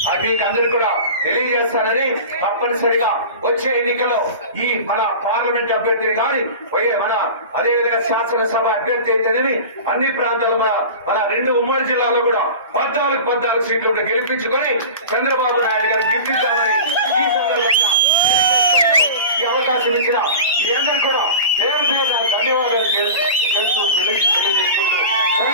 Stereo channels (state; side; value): inverted; both; correlation -0.33